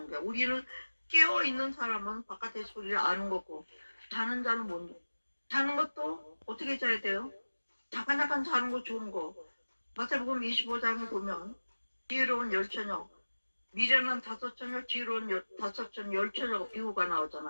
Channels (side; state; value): both; inverted; correlation -1.00